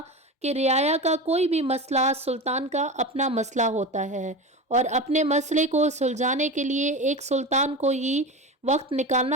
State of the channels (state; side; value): normal; both; correlation 0.26